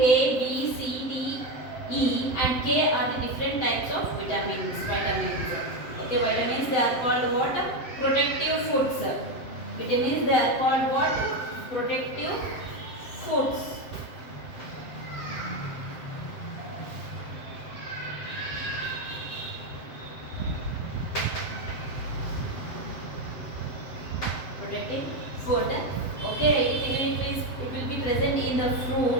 B, C, D, E and K are the different types of vitamins. Okay, vitamins they are called what? Protective foods. Vitamins they are called what? Protective foods. Protective food. Okay, it will be present in the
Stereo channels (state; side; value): late; right; 7.7 ms